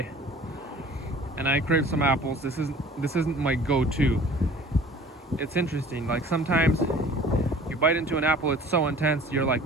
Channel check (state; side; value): normal; both; correlation 0.47